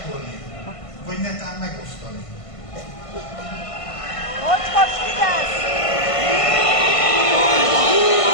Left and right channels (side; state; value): right; late; 1.5 ms